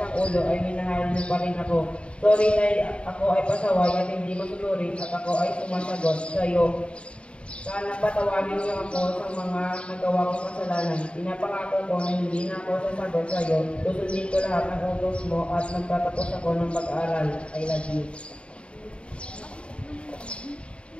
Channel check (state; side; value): late; right; 0.058 ms